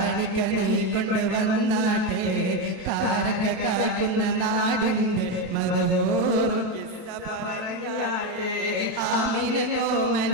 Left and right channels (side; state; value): left; late; 27 ms